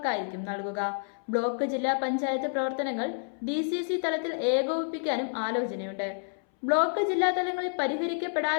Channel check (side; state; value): right; silent; 59 dB below the other